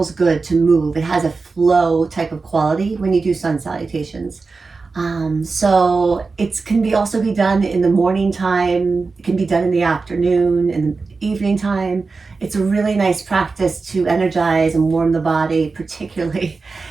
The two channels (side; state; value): left; quieter; 4.2 dB